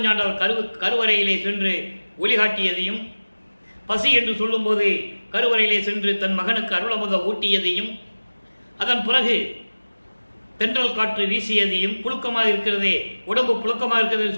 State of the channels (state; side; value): inverted; both; correlation -1.00